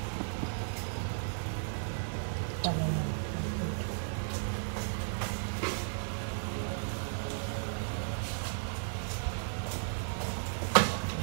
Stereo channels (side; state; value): left; silent; digital silence